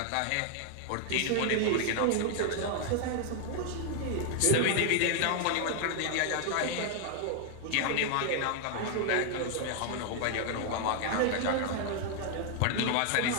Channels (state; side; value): different; both; correlation 0.00